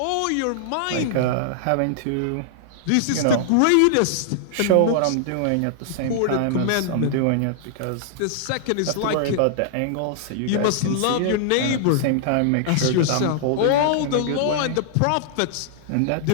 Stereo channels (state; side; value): different; both; correlation -0.01